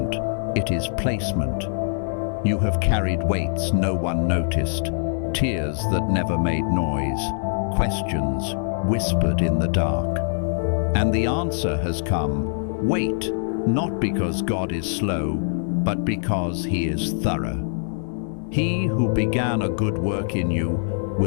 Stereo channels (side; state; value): right; silent; digital silence